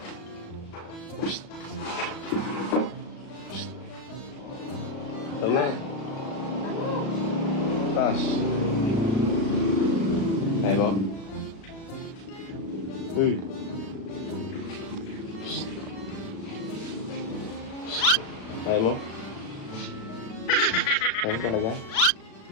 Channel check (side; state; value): right; late; 36 ms